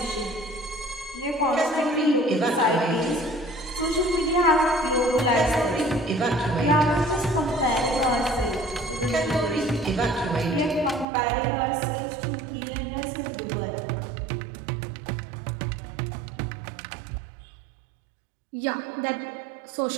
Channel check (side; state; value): left; drops out; at 11.1 s